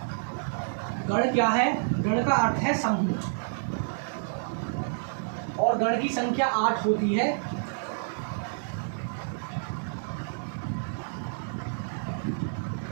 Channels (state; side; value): silent; left; digital silence